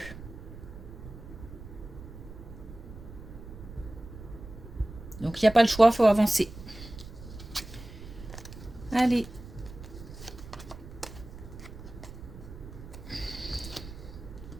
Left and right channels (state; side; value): noise; right; rumble, 13 dB below the sound